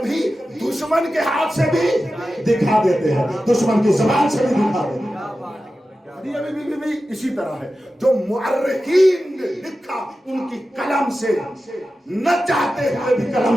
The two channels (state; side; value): normal; both; correlation 0.93